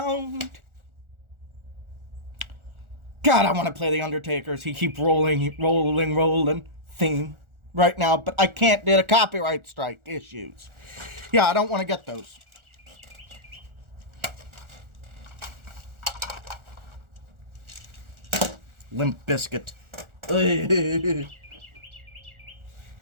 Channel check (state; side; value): late; left; 1.4 ms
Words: God, I want to play The Undertaker's He Keep Rolling theme right now, but I can't due to copyright strike issues. Yeah, I don't want to get those. Limp Bizkit.